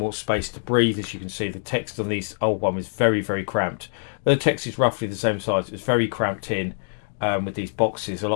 space to breathe. As you can see, the text on these old one is very, very cramped. The text is roughly the same size. It's very cramped in with these boxes. A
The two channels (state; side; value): silent; right; digital silence